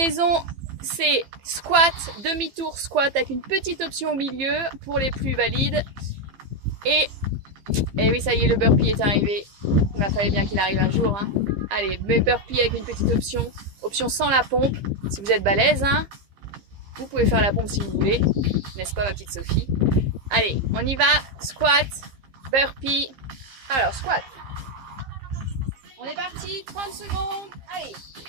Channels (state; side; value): late; left; 15 ms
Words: C'est squat, demi-tour squat avec une petite option au milieu pour les plus valides. Et oui, ça y est, le burpee est arrivé. Il fallait bien qu'il arrive un jour. Hein. Allez, mais burpee avec une petite option. Option sans la pompe. Si vous êtes balèze, hein, vous pouvez faire la pompe si vous voulez. N'est-ce pas, ma petite Sophie? Allez, on y va. Squat, burpee. Alors, squat. On est parti. 30 secondes. Allez.